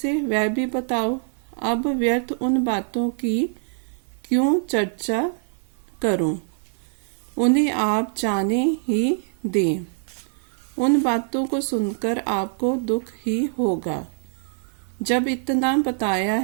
वह भी बताओ। अब व्यर्थ उन बातों की क्यों चर्चा करूं, उन्हें आप जाने ही दें। उन बातों को सुनकर आपको दुख ही होगा। जब इतना बताया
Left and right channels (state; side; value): silent; left; 56 dB below the other